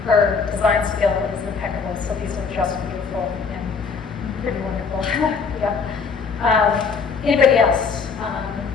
her design skill is impeccable, so these are just beautiful and pretty wonderful. Yeah. Anybody else?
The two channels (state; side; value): quieter; right; 5.3 dB